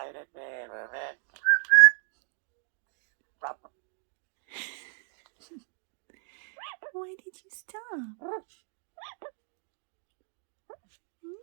Why did you stop?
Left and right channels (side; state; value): left; silent; 56 dB below the other